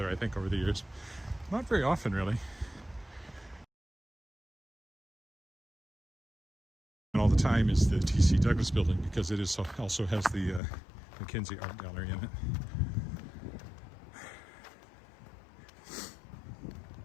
I think, over the years. Not very often, really. And all the time is the T.C. Douglas Building, because it is also has the Mackenzie Art Gallery in it.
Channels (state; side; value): drops out; right; at 10.6 s